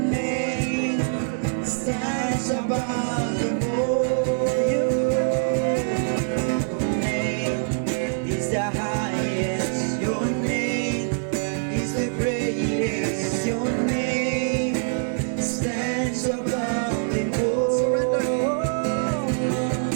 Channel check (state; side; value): silent; left; digital silence